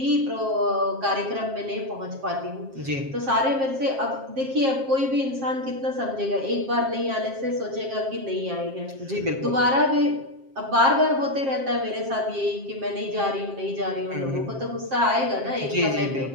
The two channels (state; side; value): late; left; 7.5 ms